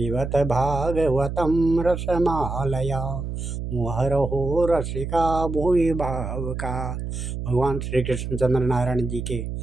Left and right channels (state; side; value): noise; right; hum, 5 dB below the sound